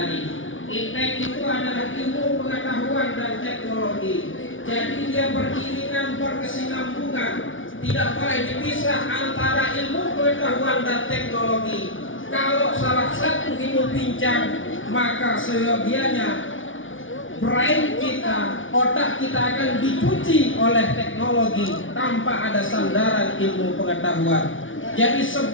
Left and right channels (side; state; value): right; late; 0.57 ms